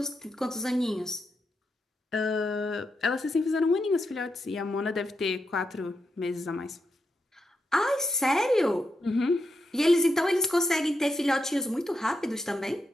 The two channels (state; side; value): normal; both; correlation 0.84